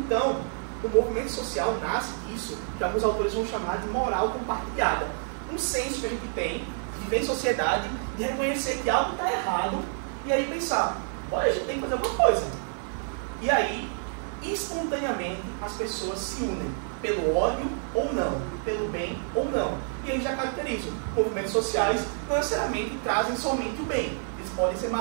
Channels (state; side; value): silent; left; 59 dB below the other